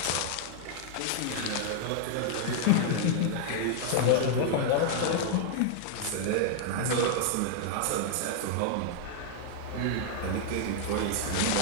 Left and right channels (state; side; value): different; both; correlation -0.01